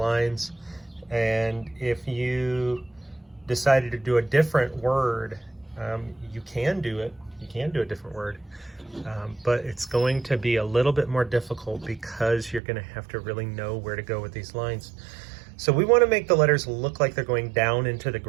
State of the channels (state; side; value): drops out; left; at 12.6 s